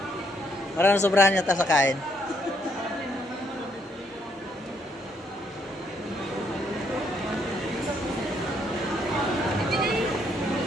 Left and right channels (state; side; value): normal; both; correlation 0.72